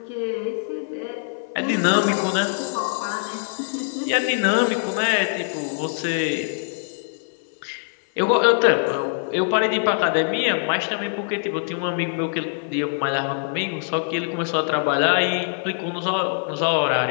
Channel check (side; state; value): right; silent; 56 dB below the other